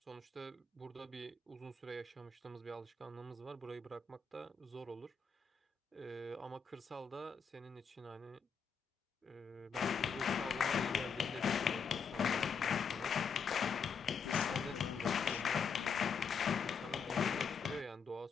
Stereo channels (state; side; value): quieter; right; 5.9 dB